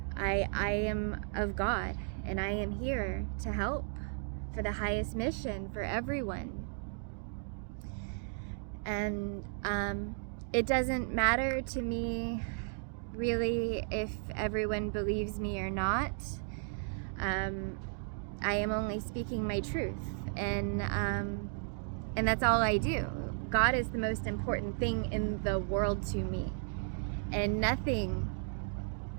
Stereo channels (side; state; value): left; silent; 55 dB below the other